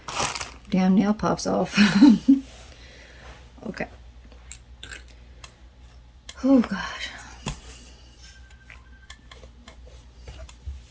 damn nail pops off. Okay. Oh gosh.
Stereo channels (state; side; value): identical; both; correlation 1.00